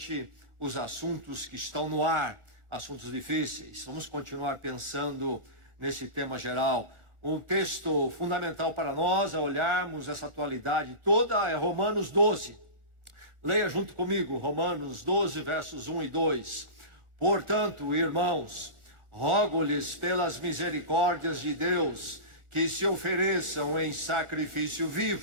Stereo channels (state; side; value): late; left; 1.4 ms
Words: os assuntos que estão no ar, assuntos difíceis. Vamos continuar pensando nesse tema geral. Um texto fundamental para nós a olharmos essa atualidade toda é Romanos 12. Leia junto comigo, Romanos 12, versos 1 e 2. Portanto, irmãos, rogo-lhes pelas misericórdias de Deus que se ofereçam em sacrifício